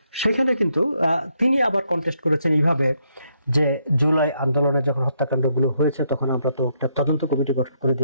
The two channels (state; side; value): inverted; both; correlation -0.76